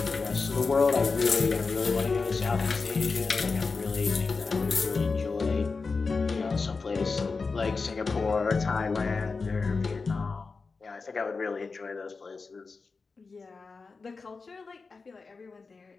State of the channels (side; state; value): right; quieter; 4.4 dB